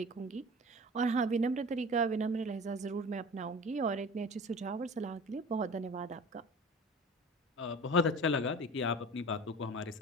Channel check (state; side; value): normal; both; correlation 0.38